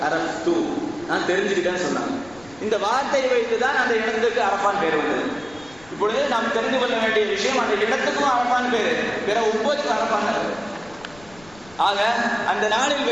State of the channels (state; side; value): noise; left; rumble, 24 dB below the sound